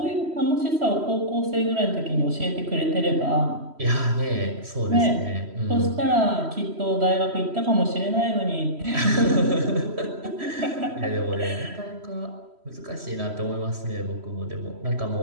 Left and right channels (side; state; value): left; late; 3.1 ms